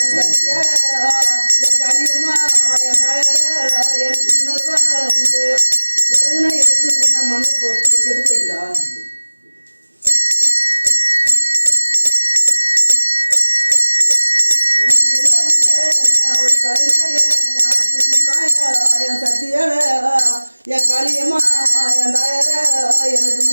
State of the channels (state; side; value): inverted; both; correlation -1.00